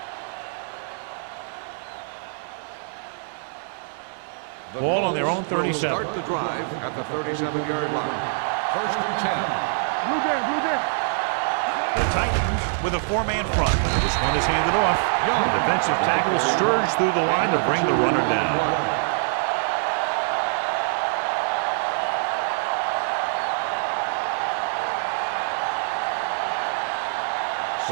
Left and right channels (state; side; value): silent; left; 59 dB below the other